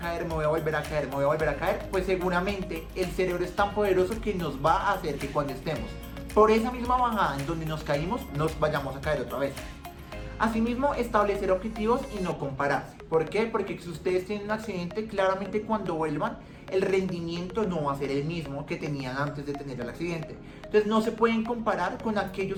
me voy a volver a caer, me voy a volver a caer, pues seguramente el cerebro es tan poderoso que nos va a hacer que cuando estemos por esa misma bajada en donde nos caímos, nos vayamos a caer otra vez. Asimismo, establecer objetivos y no compararse. ¿Por qué? Porque si ustedes tienen un accidente, claramente cuando vuelvan, el rendimiento no va a ser el mismo que tenían antes de tener el accidente. Entonces no se pueden comparar con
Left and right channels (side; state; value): both; identical; correlation 1.00